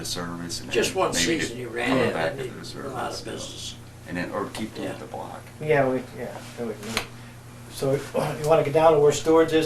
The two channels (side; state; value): both; identical; correlation 1.00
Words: service and Just then one maybe season he to ran go it, back and into he the did service. a lot of business. And then or keep them Yeah. at the block. Yeah, So you want to get down to where Stewart's